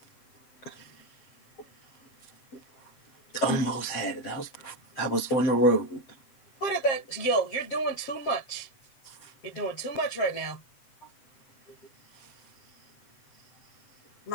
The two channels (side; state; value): right; late; 7.9 ms